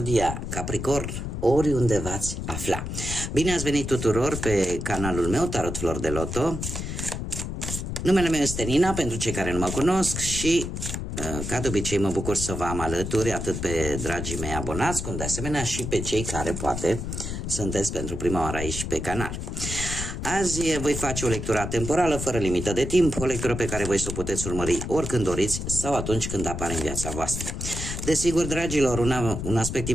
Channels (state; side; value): noise; left; rumble, 5 dB below the sound